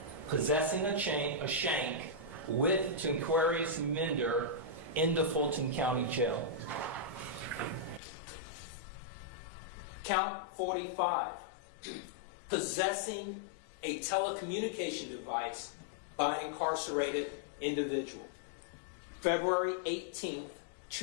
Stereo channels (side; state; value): right; drops out; at 8.0 s